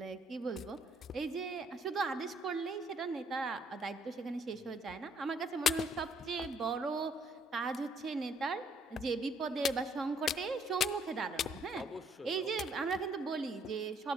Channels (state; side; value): normal; both; correlation 0.65